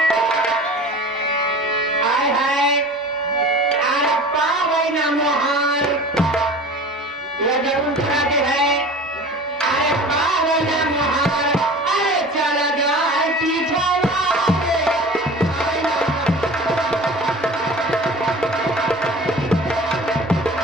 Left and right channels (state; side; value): normal; both; correlation 0.39